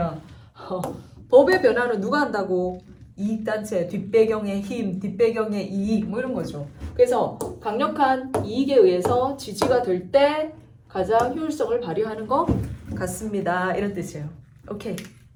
법의 변화는 누가 한다고? 이익단체, 뒷배경의 힘, 뒷배경의 이익 뭐 이런 거죠. 그래서 강력한 이익에 의해서 지지가 될 때 가장 효율성을 발휘하는 것 같습니다. 이런 뜻이에요. 오케이.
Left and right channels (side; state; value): both; identical; correlation 1.00